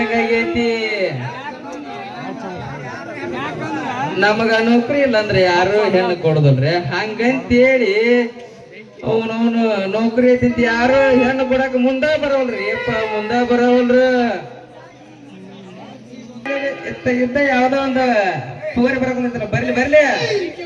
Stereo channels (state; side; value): identical; both; correlation 1.00